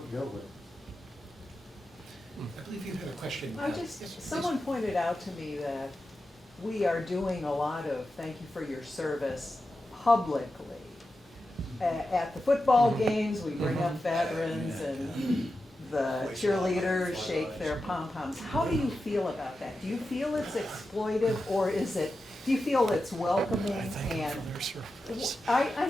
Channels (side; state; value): both; normal; correlation 0.91